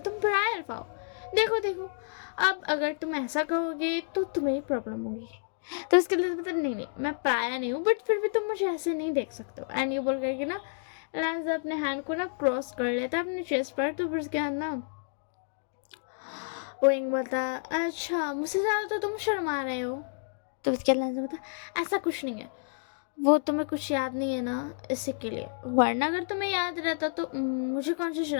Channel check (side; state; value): right; silent; digital silence